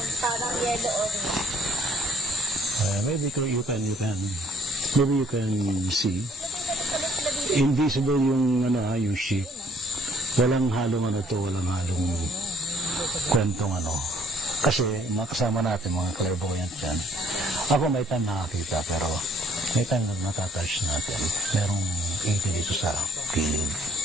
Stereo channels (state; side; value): normal; both; correlation 0.61